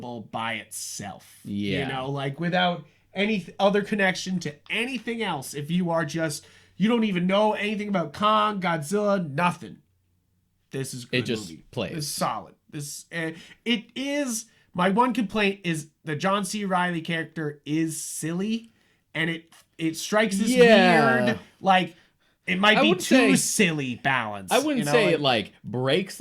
by itself. Yeah. Like without any other connection to anything else. If you are just, you don't even know anything about Kong, Godzilla, nothing. This is a good just movie. plays. It's solid. It is, my one complaint is the John C. Reilly character is silly, and it strikes this weird, like, it might be too silly balance. I wouldn't say it like breaks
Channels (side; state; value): both; identical; correlation 1.00